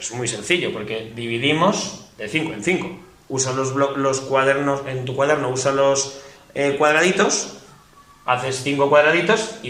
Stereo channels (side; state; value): both; identical; correlation 1.00